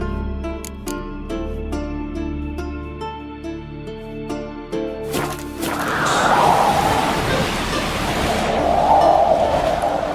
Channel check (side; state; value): both; identical; correlation 1.00